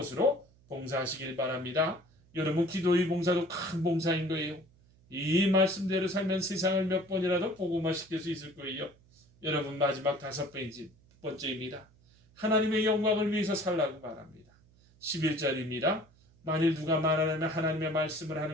봉사하시길 바랍니다. 여러분, 기도의 봉사도 큰 봉사인 거예요. 이 말씀대로 살면 세상을 몇 번이라도 복음화시킬 수 있을 거예요. 여러분, 마지막 5번째입니다. 하나님의 영광을 위해서 살라고 말합니다. 11절입니다. 만일 누가 말하려면 하나님의 말씀을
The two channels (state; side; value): noise; right; hum, 29 dB below the sound